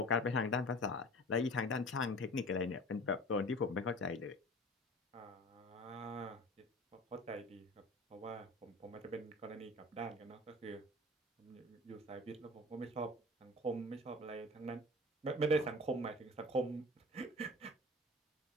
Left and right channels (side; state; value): both; normal; correlation 0.40